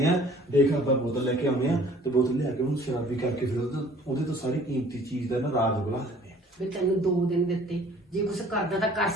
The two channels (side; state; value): both; normal; correlation 0.53